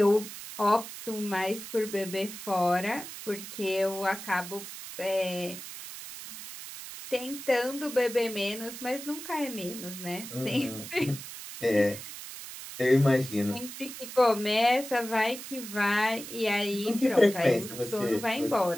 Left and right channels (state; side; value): noise; right; hiss, 11 dB below the sound